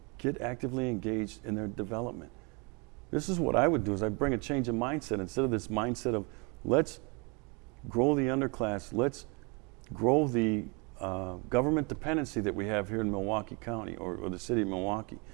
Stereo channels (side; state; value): left; quieter; 31.4 dB